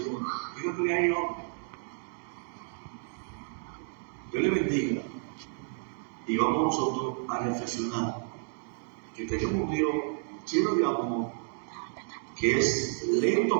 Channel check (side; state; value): left; silent; 57 dB below the other